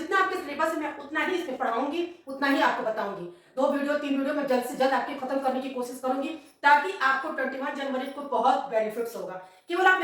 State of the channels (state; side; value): identical; both; correlation 1.00